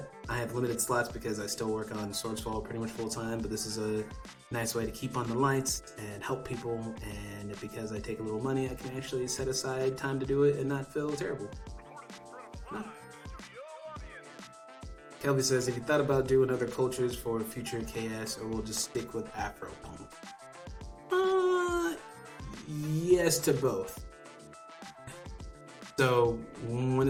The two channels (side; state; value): both; identical; correlation 1.00